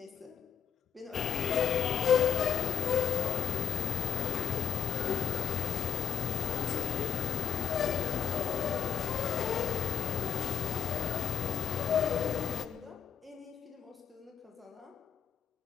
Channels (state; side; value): quieter; right; 7.8 dB